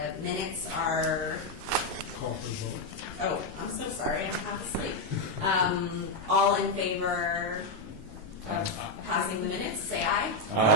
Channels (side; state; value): left; late; 12 ms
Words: minutes are... Call for the vote. Oh, I'm so sorry. I'm half asleep. All in favor of passing the minutes, say aye.